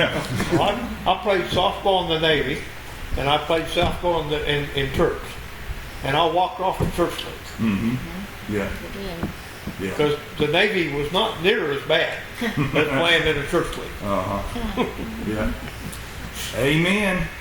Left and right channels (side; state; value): both; identical; correlation 1.00